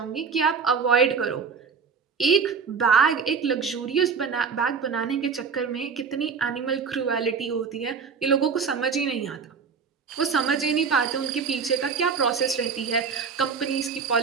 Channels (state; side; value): quieter; left; 5.8 dB